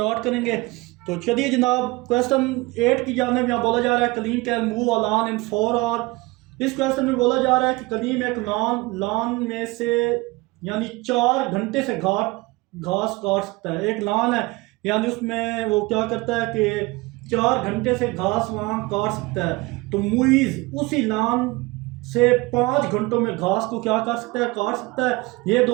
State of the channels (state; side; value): quieter; left; 22.9 dB